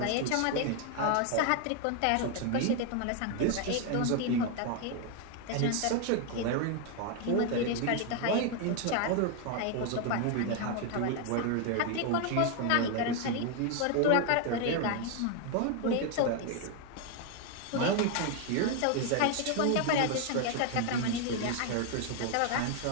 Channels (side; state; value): both; different; correlation 0.01